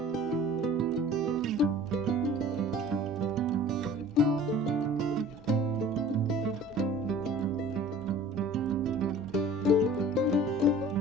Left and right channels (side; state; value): both; normal; correlation 0.45